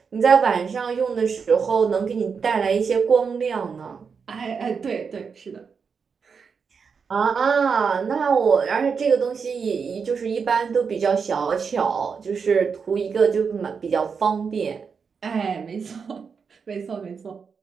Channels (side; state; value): left; quieter; 5.8 dB